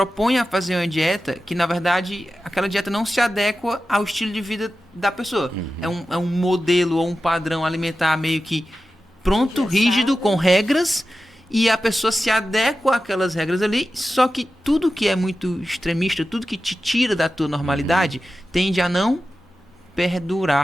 a fazer uma dieta que, na verdade, aquela dieta não se adequa ao estilo de vida da pessoa. É um modelo ou um padrão alimentar meio que pronto, Engessado. rígido, com regras, e a pessoa se adequa àquelas regras ali, só que tudo que é muito extremista, tudo que te tira da tua normalidade, tende a não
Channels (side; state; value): both; normal; correlation 0.93